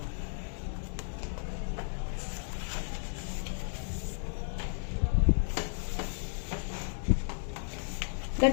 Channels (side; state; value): right; silent; 55 dB below the other